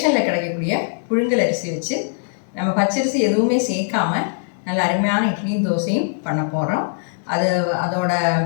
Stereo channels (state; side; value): silent; right; digital silence